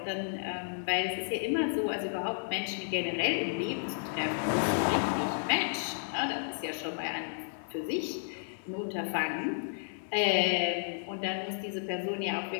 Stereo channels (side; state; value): right; silent; 56 dB below the other